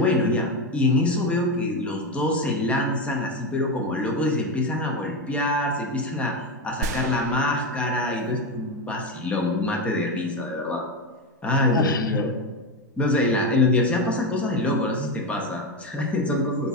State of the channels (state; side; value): normal; both; correlation 0.14